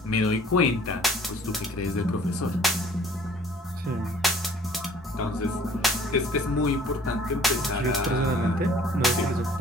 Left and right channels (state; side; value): normal; both; correlation 0.53